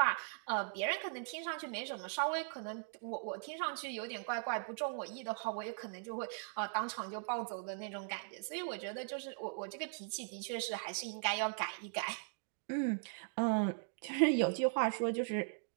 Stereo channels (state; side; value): silent; left; digital silence